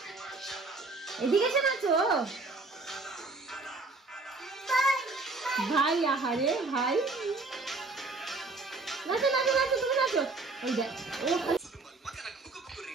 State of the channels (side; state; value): left; quieter; 3.6 dB